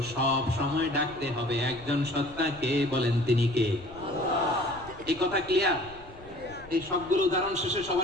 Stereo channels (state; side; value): noise; left; rumble, 20 dB below the sound